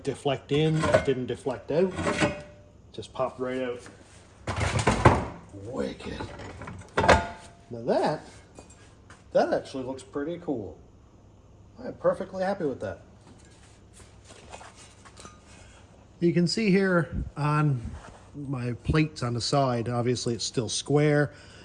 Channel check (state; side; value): identical; both; correlation 1.00